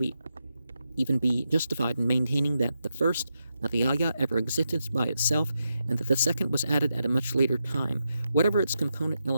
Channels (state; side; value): inverted; both; correlation -0.86